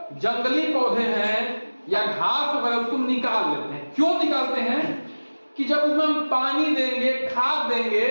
जंगली पौधे हैं या घास वगैरह उसको निकाल लेते हैं। क्यों निकालते हैं? कि जब उसमें हम पानी देंगे, खाद देंगे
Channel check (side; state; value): both; inverted; correlation -1.00